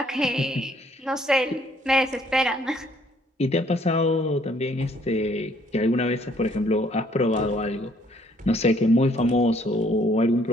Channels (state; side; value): normal; both; correlation 0.64